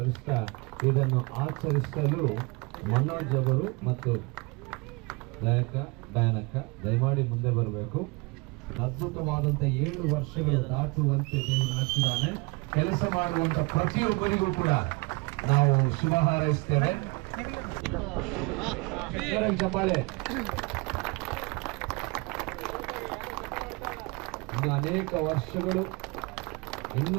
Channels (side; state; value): left; quieter; 28.2 dB